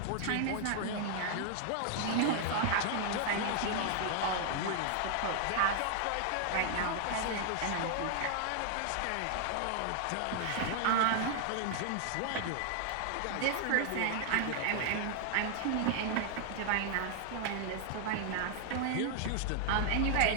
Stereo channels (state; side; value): different; both; correlation 0.00